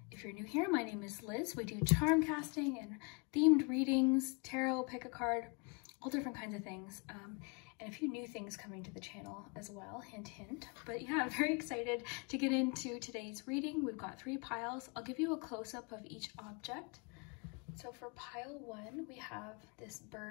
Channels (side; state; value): right; quieter; 32.5 dB